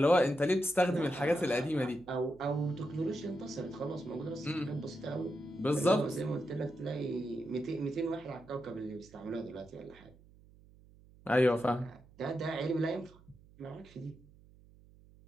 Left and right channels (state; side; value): noise; right; hum, 25 dB below the sound